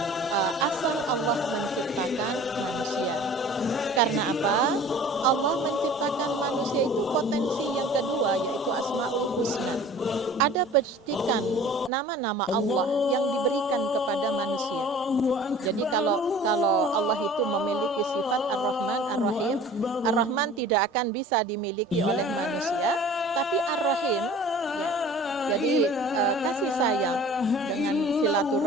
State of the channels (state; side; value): normal; both; correlation 0.45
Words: asal Allah menciptakan manusia. Karena apa? Allah menciptakan manusia itu potensi yang kedua yaitu Asmaul Husna. Ada petikan nama-nama Allah yang diberikan kepada manusia. Jadi kalau Allah itu memiliki sifat Ar-Rahman, Ar-Rahim, Ar-Rahman tidak akan bisa dimiliki oleh manusia, tapi Ar-Rahim ya. Jadi kasih sayang dengan